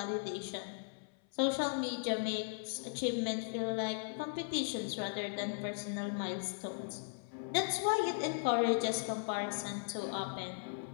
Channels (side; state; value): right; silent; 53 dB below the other